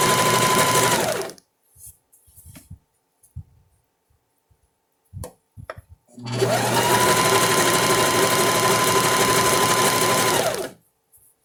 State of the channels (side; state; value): both; identical; correlation 1.00